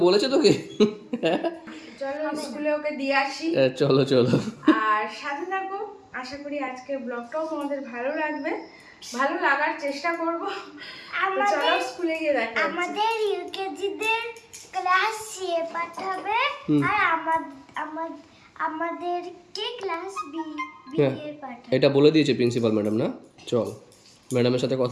বলেছে তোকে? চলো স্কুলে ওকে দিয়ে আসি। চলো চলো। আর সাথে থাকো, আশা করি আজকের ব্লগটাও তোমাদের ভালো লাগবে, ভালো লাগার চেষ্টা করব। চলো স্কুলে গিয়ে দেখা হচ্ছে। আমাদের ইউকেজিদের ক্লাস সি পাঠাবে আর আমাদেরকে ক্লাস বি এ পাঠাবে। এটা বলে দিয়েছে প্রিন্সিপাল ম্যাডাম না? চল ম্যাডামের সাথে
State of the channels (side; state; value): both; identical; correlation 1.00